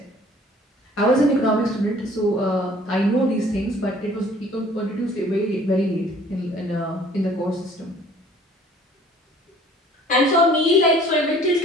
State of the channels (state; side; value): normal; both; correlation 0.53